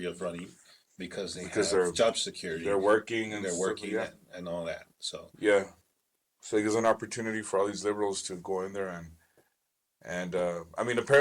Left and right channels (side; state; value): both; identical; correlation 1.00